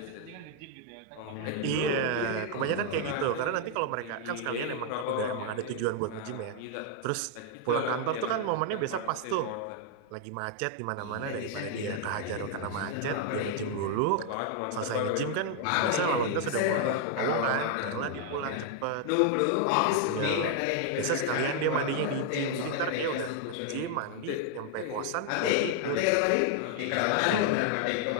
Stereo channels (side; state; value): both; different; correlation 0.00